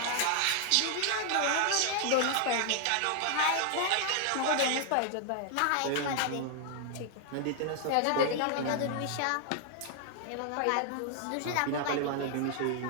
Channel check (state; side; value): different; both; correlation 0.00